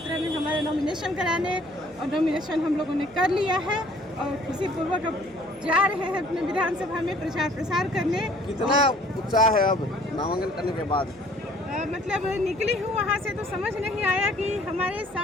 में हमारे नॉमिनेशन कराने, और नॉमिनेशन हम लोगों ने कर लिया है और खुशीपूर्वक अब जा रहे हैं अपने विधानसभा में प्रचार प्रसार करने। कितना उत्साह है अब नामांकन करने के बाद? मतलब निकली हूँ वहाँ से तो समझ नहीं आया कि हमारे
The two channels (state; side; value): noise; left; hum, 26 dB below the sound